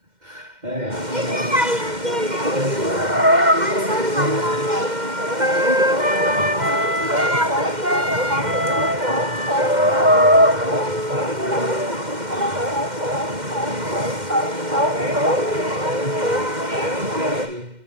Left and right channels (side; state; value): left; late; 2.1 ms